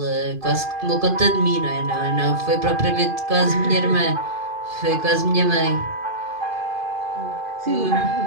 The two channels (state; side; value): late; left; 2.4 ms